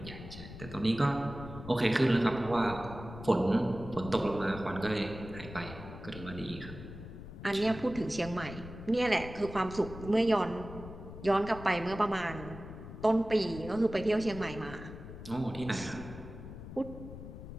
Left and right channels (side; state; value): left; noise; rumble, 12 dB below the sound